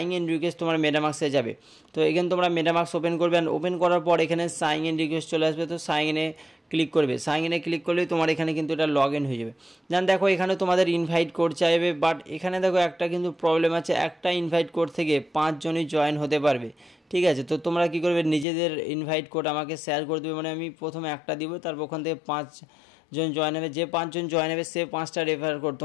ইন রিকোয়েস্ট তোমার মেটামাক্সে যাবে। তো এখানে তোমরা মেটামাক্স ওপেন করবে অ্যান্ড ওপেন করার পর এখানে সাইন ইন রিকোয়েস্ট চলে আসবে। তো সাইন ইনে ক্লিক করবে, সাইন ইনে ক্লিক করলেই তোমার এখানে কিন্তু এটা লগ ইন হয়ে যাবে। দেন দেখো এখানে তোমাদের ইনভাইট কোড চাইবে, বাট এখানে দেখো একটা কিন্তু প্রবলেম আছে, একটা ইনভাইট কোড থেকে 5 জনই জয়েন হতে পারবে। ঠিক আছে, তো তোমরা কী করবে, নিজেদের ইনভাইট কোড আমাকে শেয়ার করে দেবে। মানে আমি প্রথমে একটা দিব, তারপর ওখান থেকে 5 জন জয়েন হবে। যে 5 জন জয়েন হবে সে 5টা রেফার কোড,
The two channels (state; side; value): drops out; right; at 18.4 s